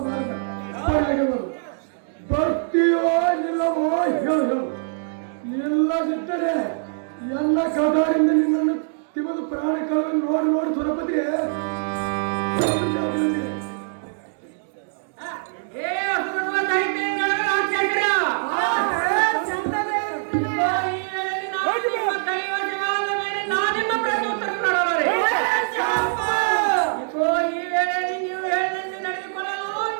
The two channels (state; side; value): silent; left; digital silence